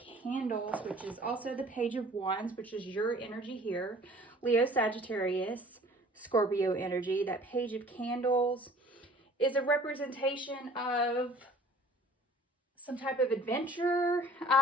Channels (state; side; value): normal; both; correlation 0.50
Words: which is also the Page of Wands, which is your energy here. Leo, Sagittarius, Scorpio energy. That Page of Candles is a representation of some type of adventure,